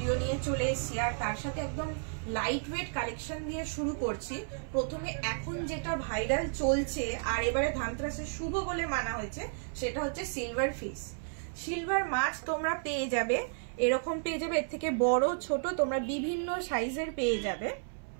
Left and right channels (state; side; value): silent; left; 56 dB below the other